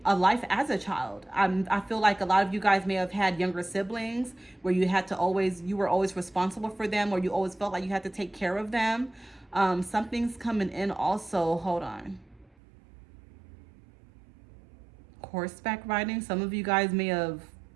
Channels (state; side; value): drops out; left; at 12.5 s